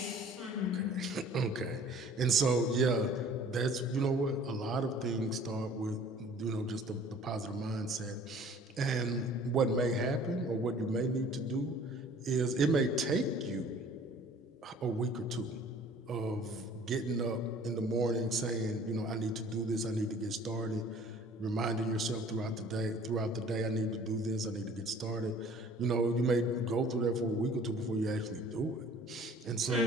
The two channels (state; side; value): normal; both; correlation 0.51